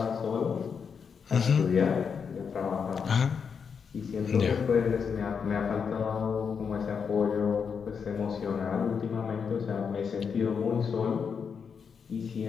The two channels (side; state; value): right; quieter; 6.3 dB